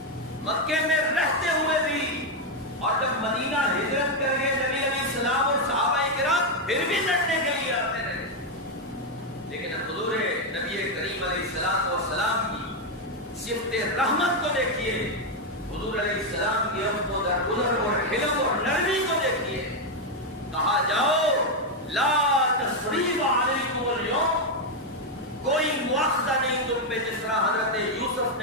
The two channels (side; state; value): both; normal; correlation 0.04